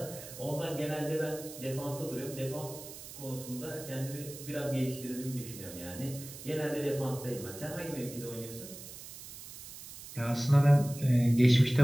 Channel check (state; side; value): noise; right; hiss, 13 dB below the sound